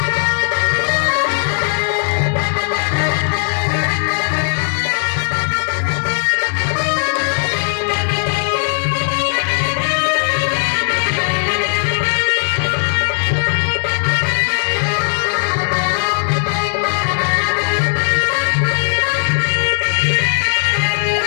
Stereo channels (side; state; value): right; silent; digital silence